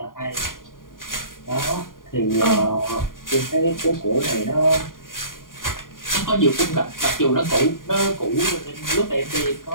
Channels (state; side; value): late; right; 0.90 ms